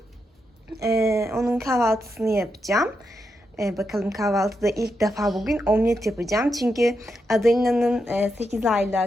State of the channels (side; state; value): both; normal; correlation 0.84